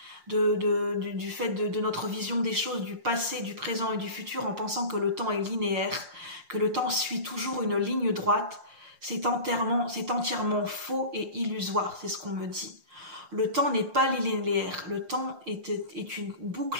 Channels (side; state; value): left; late; 5.6 ms